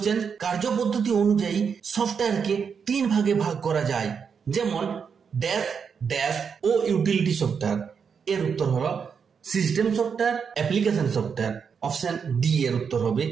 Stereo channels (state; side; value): quieter; left; 6.4 dB